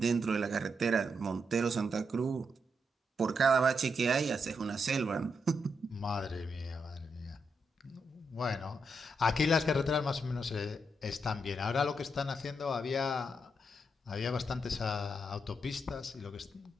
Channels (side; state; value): both; normal; correlation 0.81